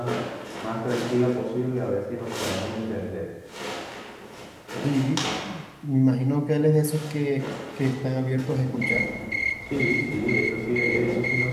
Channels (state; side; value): identical; both; correlation 1.00